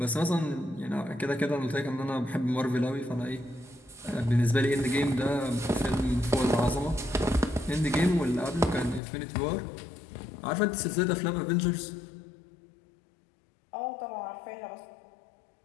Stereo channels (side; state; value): right; drops out; at 9.0 s